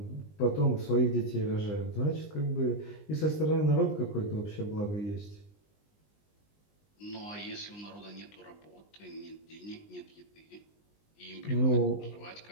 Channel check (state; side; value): late; right; 20 ms